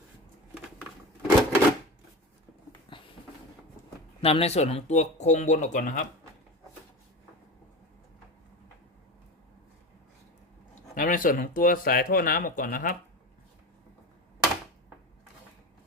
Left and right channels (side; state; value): both; normal; correlation 0.27